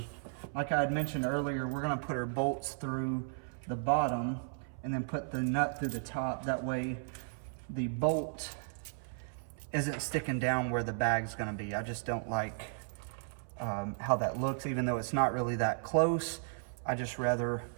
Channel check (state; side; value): silent; left; 55 dB below the other